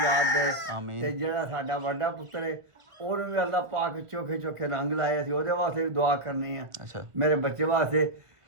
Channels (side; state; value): left; late; 1.4 ms